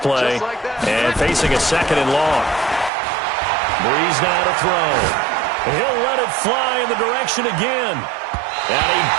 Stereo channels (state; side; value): drops out; left; at 2.9 s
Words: and facing a 2nd and long. Breeze now to throw. He'll let it fly in the direction again. And he